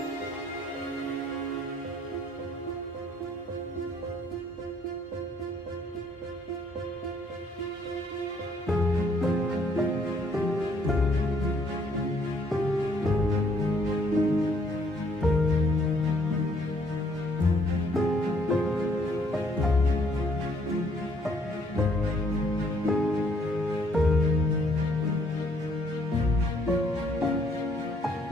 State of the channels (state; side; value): normal; both; correlation 0.65